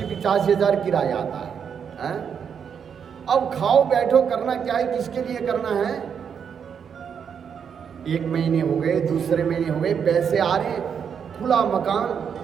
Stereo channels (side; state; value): left; quieter; 7.3 dB